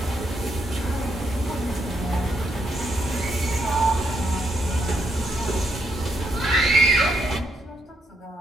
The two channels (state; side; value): normal; both; correlation 0.77